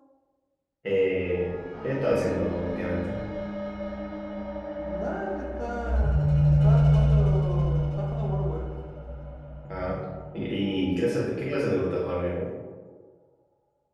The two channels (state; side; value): identical; both; correlation 1.00